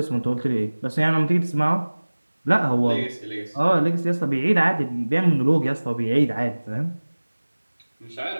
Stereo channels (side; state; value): both; inverted; correlation -1.00